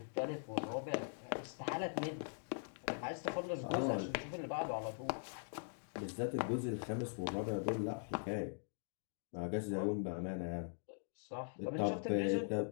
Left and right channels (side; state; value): right; silent; digital silence